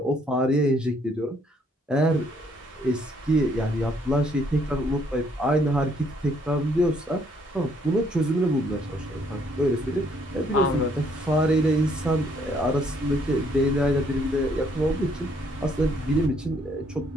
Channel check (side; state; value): both; normal; correlation 0.67